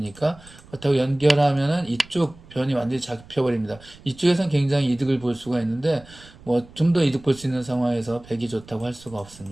그렇다고 연결하면은 이쪽 변이 완전히 잡혀버립니다. 이쪽에선 굉장히 이득을 볼 수가 있는데 뭐 좀 더 이득 볼 수 있는 상황에서 백이 좋다고 할 수가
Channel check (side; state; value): right; noise; rumble, 22 dB below the sound